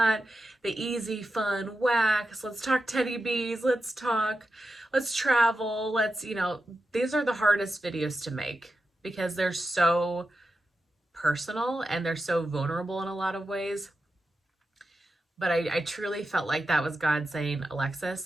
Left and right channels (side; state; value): both; normal; correlation 0.90